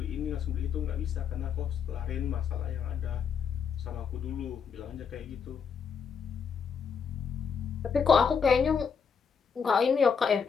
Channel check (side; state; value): right; quieter; 6.5 dB